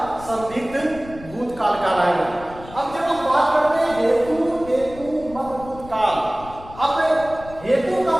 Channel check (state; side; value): noise; left; rumble, 17 dB below the sound